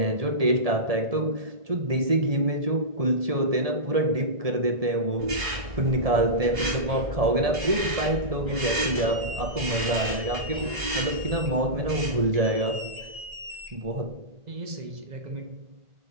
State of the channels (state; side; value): late; left; 1.7 ms